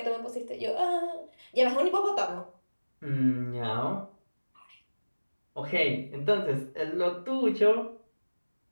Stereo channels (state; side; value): inverted; both; correlation -1.00